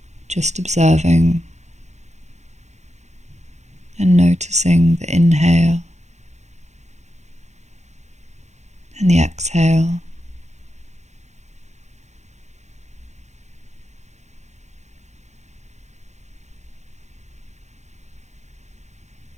Just observing and noticing the inhale and the exhale.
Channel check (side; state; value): left; late; 0.33 ms